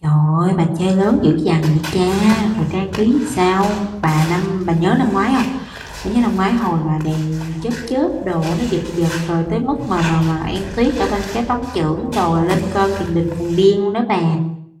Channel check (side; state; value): both; identical; correlation 1.00